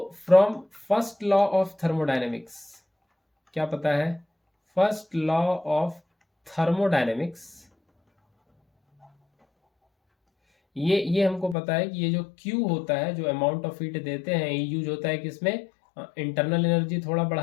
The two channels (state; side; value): drops out; right; at 11.6 s